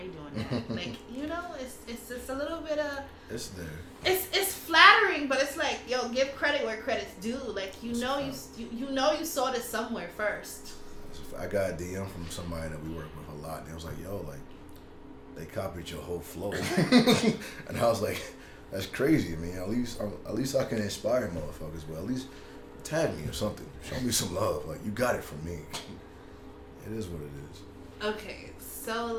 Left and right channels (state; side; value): identical; both; correlation 1.00